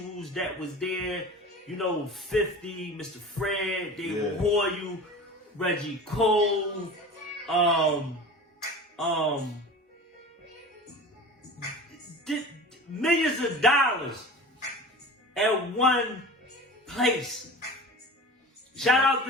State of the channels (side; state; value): both; normal; correlation 0.35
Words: that was there. You know, 50, Mr. Fred, David Hoyle, Reggie Cole, millions of dollars at one place. Shout out